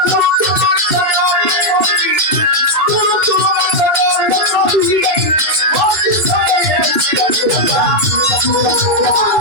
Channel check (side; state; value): left; late; 3.1 ms